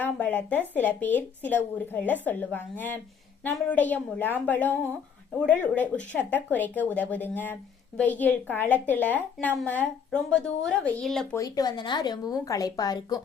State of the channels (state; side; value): quieter; right; 7.0 dB